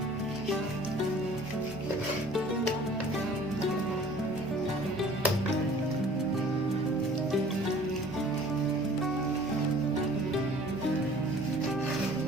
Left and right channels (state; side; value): normal; both; correlation 0.50